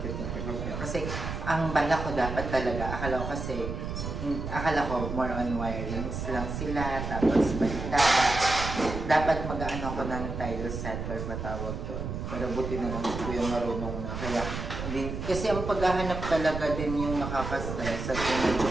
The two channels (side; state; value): right; noise; rumble, 5 dB below the sound